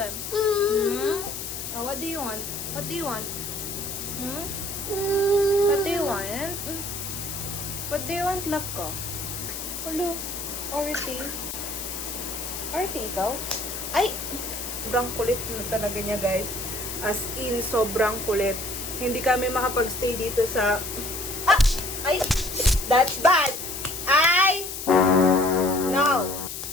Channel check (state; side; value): noise; left; hiss, 7 dB below the sound